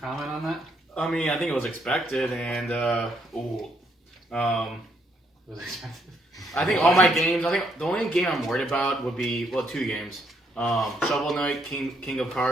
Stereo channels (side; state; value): both; normal; correlation 0.72